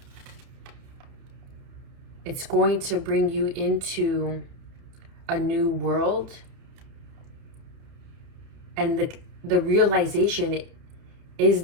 It's going to bring you into a new world. And the realization is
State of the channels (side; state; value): left; late; 30 ms